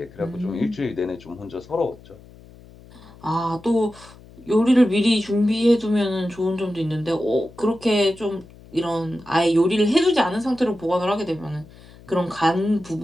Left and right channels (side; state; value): left; noise; hum, 22 dB below the sound